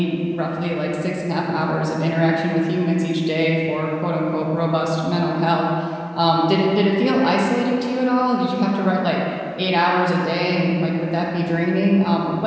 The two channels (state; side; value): identical; both; correlation 1.00